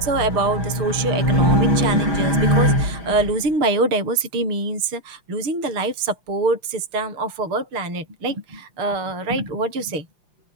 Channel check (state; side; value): late; left; 6.6 ms